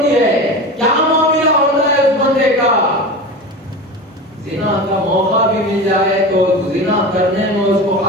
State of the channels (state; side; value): normal; both; correlation 0.29